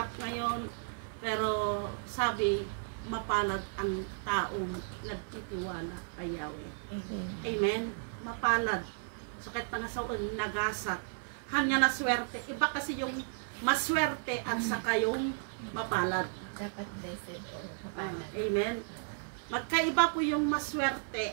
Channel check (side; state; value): left; silent; 55 dB below the other